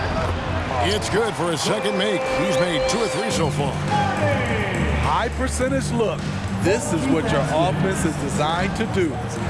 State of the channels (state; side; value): identical; both; correlation 1.00